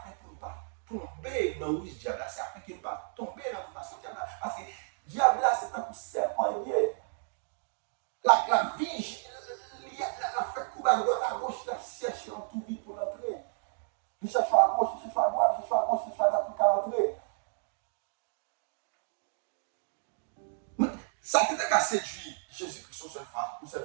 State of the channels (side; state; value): left; silent; digital silence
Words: qu'on ne pas tomber dans le diable, c'est afin qu'on ne pas tomber dans la tentation diable. Parce que diable là c'est un coup serpent lié. La vie, la fait couper à droite à gauche, la cherche en tout vite pour l'entrer. Il cherche à gauche, il cherche à droite, il cherche à gauche, il cherche à droite pour l'entrer. Ça peut être qu'à séduire Jésus-Christ une